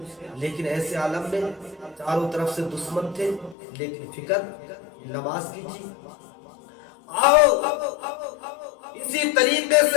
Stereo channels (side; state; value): right; drops out; at 3.6 s